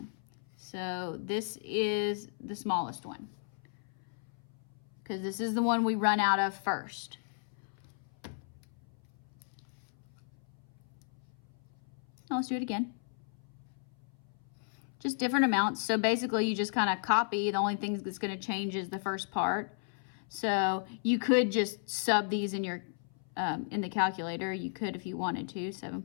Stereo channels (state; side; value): silent; right; 55 dB below the other